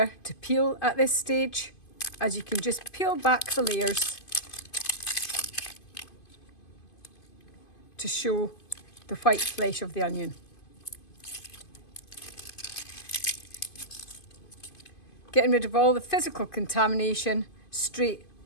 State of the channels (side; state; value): right; late; 2.5 ms